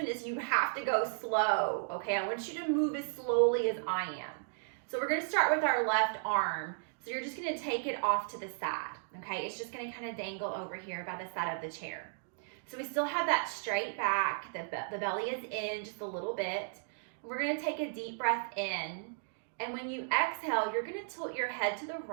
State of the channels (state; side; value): silent; left; digital silence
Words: is you have to go slow, okay? I want you to move as slowly as I am. So we're gonna start with our left arm. So you're just gonna take it off to the side, okay? It's just gonna kind of dangle over here by the side of the chair. So we still have that straight back, the belly is in just a little bit. We're gonna take a deep breath in. And when you exhale, you're gonna tilt your head to the